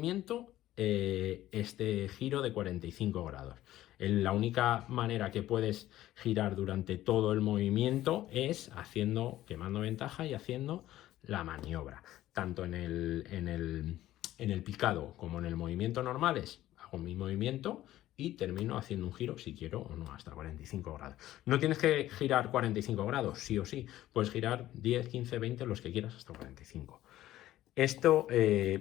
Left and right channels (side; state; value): right; quieter; 14.4 dB